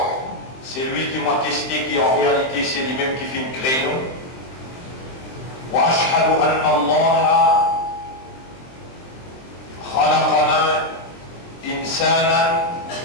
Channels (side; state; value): right; late; 23 ms